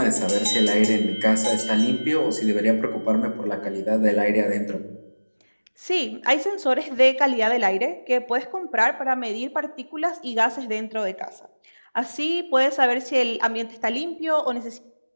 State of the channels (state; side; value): inverted; both; correlation -1.00